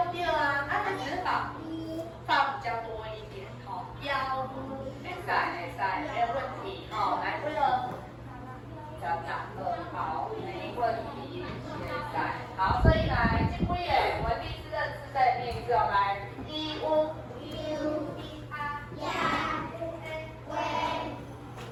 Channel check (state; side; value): identical; both; correlation 1.00